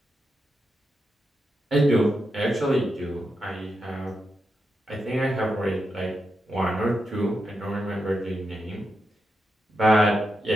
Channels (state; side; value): normal; both; correlation 0.86